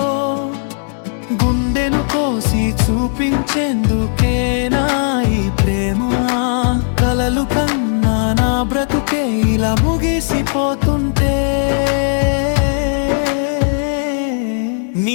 గుండెను కోసి చూపించేందుకేనా ఈ ప్రేమ, కలలు కన్నా నా బ్రతుకే ఇలా ముగిసిపోతుంటే.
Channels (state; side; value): silent; right; 67 dB below the other